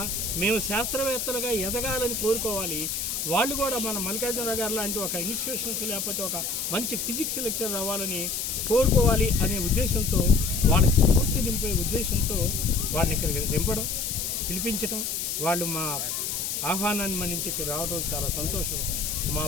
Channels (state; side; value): noise; left; hiss, 2 dB below the sound